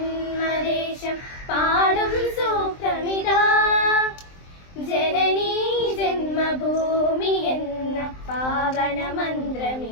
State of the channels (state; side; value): late; right; 23 ms